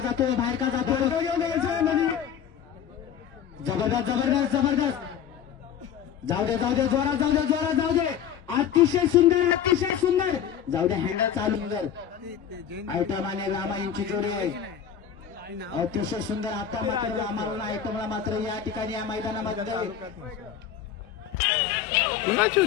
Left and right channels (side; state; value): right; quieter; 8.8 dB